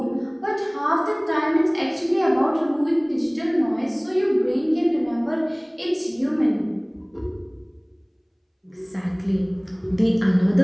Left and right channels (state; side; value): identical; both; correlation 1.00